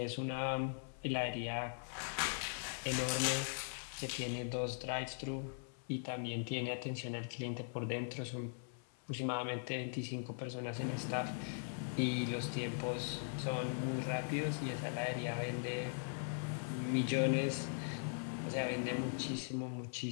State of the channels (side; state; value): right; silent; 51 dB below the other